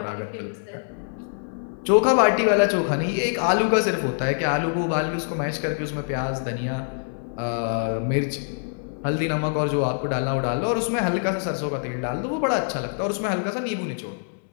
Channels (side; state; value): right; silent; 62 dB below the other